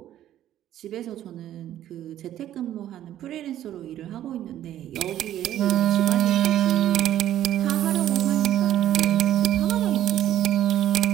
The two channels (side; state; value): left; quieter; 12.1 dB